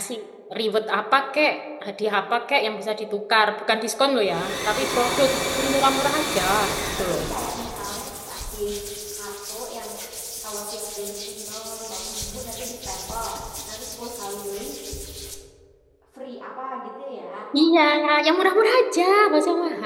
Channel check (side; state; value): both; identical; correlation 1.00